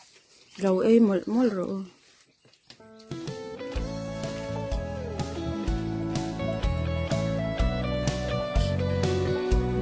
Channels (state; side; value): identical; both; correlation 1.00